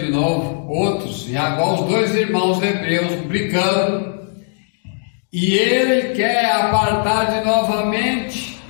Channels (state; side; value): silent; right; digital silence